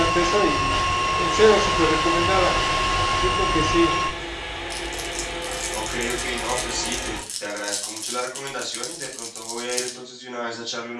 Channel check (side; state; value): both; identical; correlation 1.00